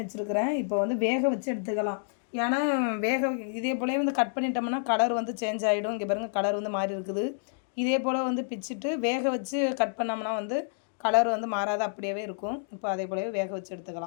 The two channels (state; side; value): silent; right; digital silence